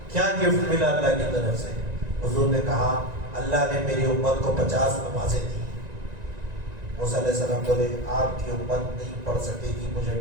کیا گفٹ ملا اللہ کی طرف سے؟ حضور نے کہا اللہ نے میری امت کو 50 نمازیں دی۔ موسیٰ علیہ السلام بولے آپ کی امت نہیں پڑھ سکے گی، مجھے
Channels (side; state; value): left; late; 1.9 ms